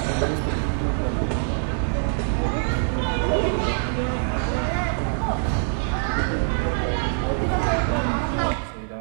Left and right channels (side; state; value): left; silent; digital silence